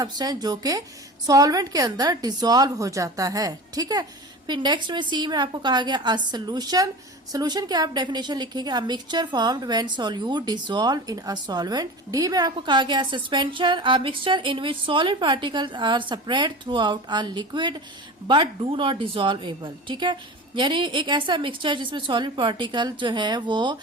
जो कि सॉल्वेंट के अंदर डिसॉल्व हो जाता है। ठीक है, फिर नेक्स्ट में सी में आपको कहा गया अ सोल्यूशन। सोल्यूशन की आप डेफिनेशन लिखेंगे a mixture formed when solute dissolve in a solvent. D में आपको कहा गया suspension, a mixture in which solid particles are spread throughout a liquid but do not dissolvable. ठीक है, यानी एक ऐसा मिक्सचर जिसमें सॉलिड पार्टिकल जो है वो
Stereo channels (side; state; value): both; normal; correlation 0.33